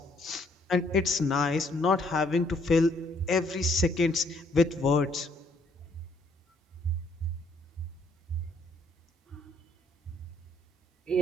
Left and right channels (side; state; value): both; normal; correlation 0.67